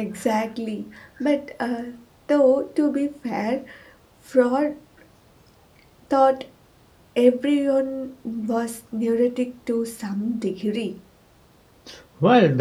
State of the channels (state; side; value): identical; both; correlation 1.00